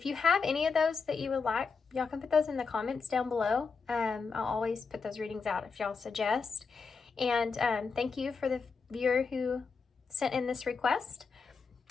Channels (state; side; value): quieter; right; 5.0 dB